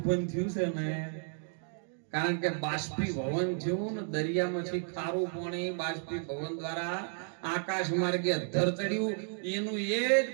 થયું છે ને, કારણ કે બાષ્પીભવન થયું ને દરિયામાંથી ખારું પાણી બાષ્પીભવન દ્વારા આકાશ માર્ગે અધ્ધર ચડ્યું. એનું એ જ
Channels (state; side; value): silent; left; 56 dB below the other